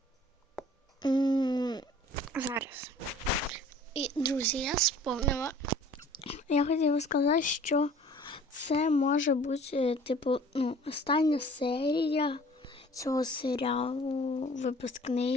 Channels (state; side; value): normal; both; correlation 0.50